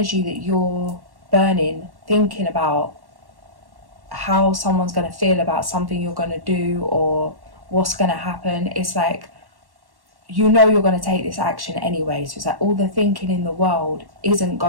that you're burning thinking about how someone's going to feel about something you're going to do or what's going to happen. It's like, you know you're going to take this action anyway. So it's like all the thinking in the world isn't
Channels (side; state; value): left; late; 1.1 ms